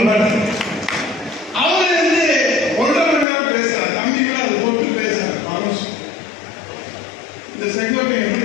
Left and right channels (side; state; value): right; drops out; at 3.2 s